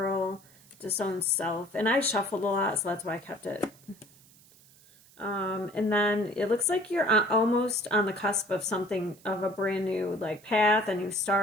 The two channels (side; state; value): right; noise; hiss, 26 dB below the sound